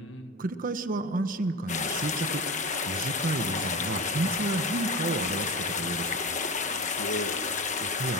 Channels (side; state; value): both; normal; correlation 0.27